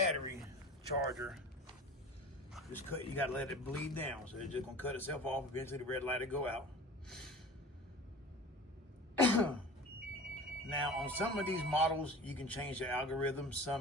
charger just cut. You gotta let it bleed down. So it's just gonna cut itself off. Eventually the red light will go out. Now on some of these models, you can change the algorithm.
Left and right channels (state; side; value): normal; both; correlation 0.38